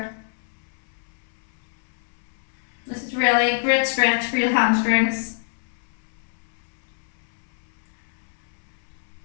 This is really a great stretch for your hamstrings.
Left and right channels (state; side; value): silent; right; 61 dB below the other